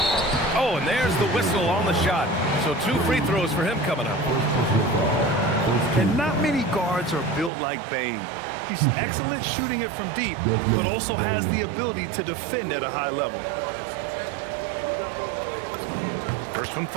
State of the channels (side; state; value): left; drops out; at 7.5 s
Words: Oh, and there's the whistle on the shot. So 2 free throws for him coming up. And not many guards are built like Bain. He's excellent shooting it from deep, but also has the ability to defend at a high level. First one